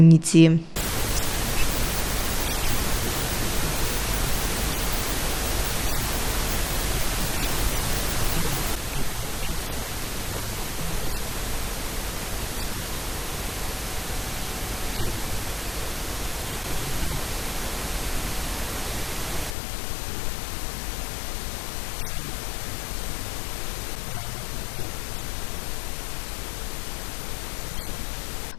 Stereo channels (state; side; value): drops out; right; at 19.6 s